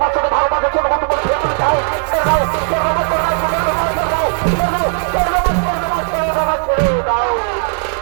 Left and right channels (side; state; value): left; silent; 57 dB below the other